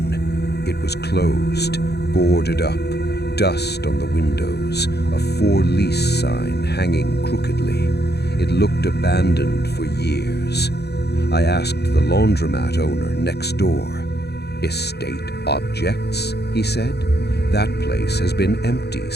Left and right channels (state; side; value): late; right; 0.48 ms